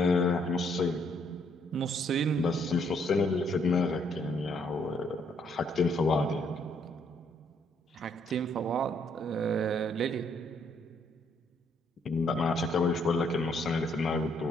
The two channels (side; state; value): both; normal; correlation 0.70